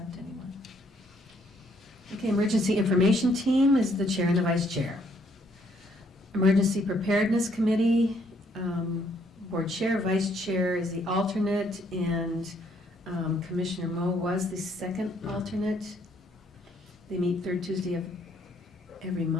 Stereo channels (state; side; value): normal; both; correlation 0.68